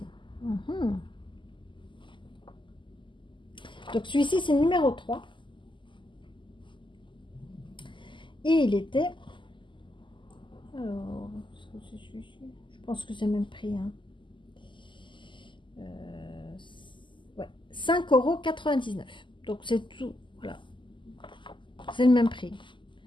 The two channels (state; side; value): late; right; 0.24 ms